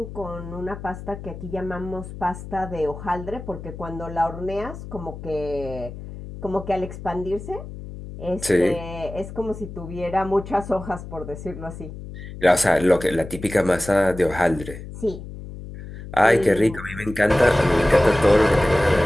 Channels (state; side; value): noise; left; hum, 12 dB below the sound